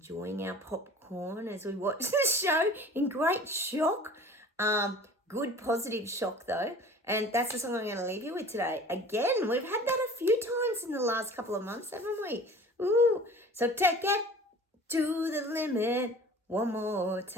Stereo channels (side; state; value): both; normal; correlation 0.43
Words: our popcorn as we watch the show in great shock. Good positive shock though. And that's the song I'm going to leave you with today. Again, we've had that a few times in the last couple of months, haven't we? Ooh. So take it to the limit one more